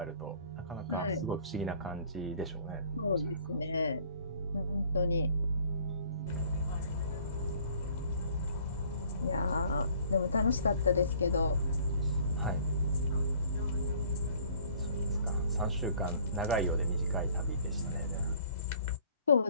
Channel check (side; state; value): both; inverted; correlation -0.56